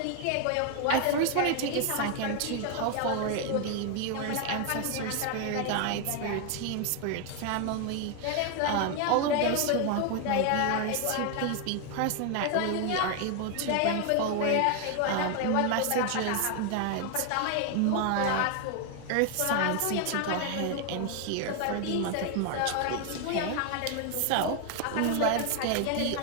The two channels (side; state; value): both; different; correlation 0.01